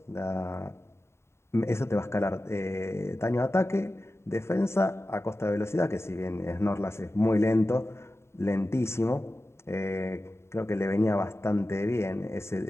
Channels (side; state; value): right; late; 0.13 ms